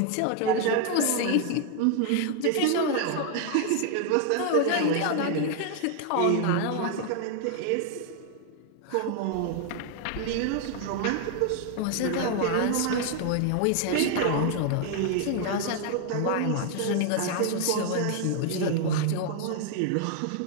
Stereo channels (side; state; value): both; different; correlation 0.00